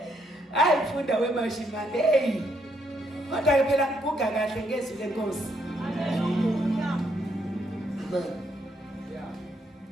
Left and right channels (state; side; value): normal; both; correlation 0.74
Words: hayi funda wemashimane hey kodwa ke phela ngiguga kahle ngezwi lenkosi